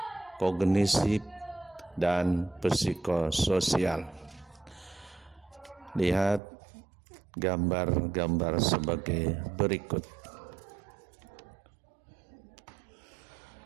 kognitif, dan psikososial. Lihat gambar-gambar sebagai berikut.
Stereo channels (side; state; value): left; drops out; at 6.4 s